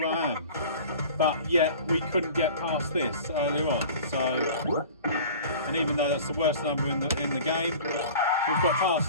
I am? But yet we couldn't get past this earlier on. So, and even though that's the worst number in the game, we've got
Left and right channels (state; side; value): inverted; both; correlation -0.42